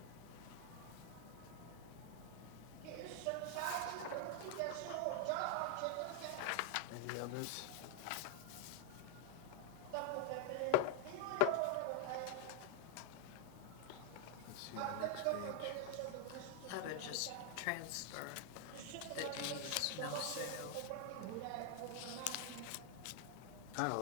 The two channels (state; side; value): different; both; correlation 0.00